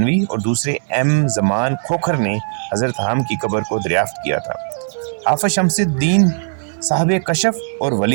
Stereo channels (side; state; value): left; silent; digital silence